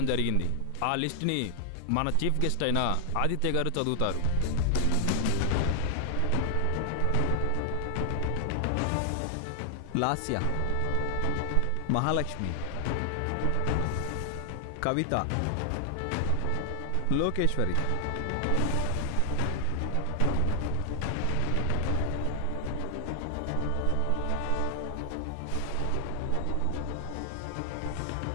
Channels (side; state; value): both; different; correlation 0.00